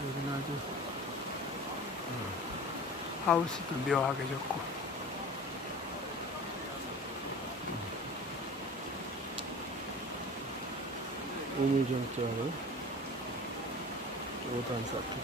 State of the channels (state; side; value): normal; both; correlation 0.38